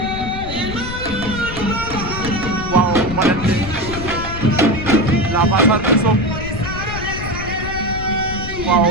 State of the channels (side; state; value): left; noise; rumble, 8 dB below the sound